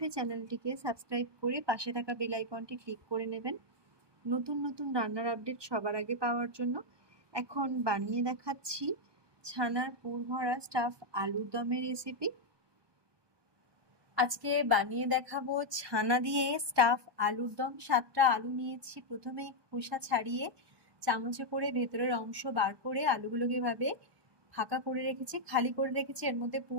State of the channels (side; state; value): left; late; 1.2 ms